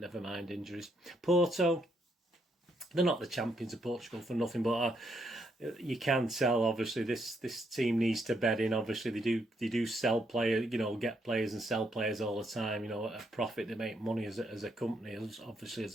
mind injuries. Porto, they're not the champions of Portugal for nothing, but you can tell, obviously, this team needs to bed in. Obviously, they do sell players, get players and sell players all the time, at a profit. They make money as a company, obviously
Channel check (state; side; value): normal; both; correlation 0.75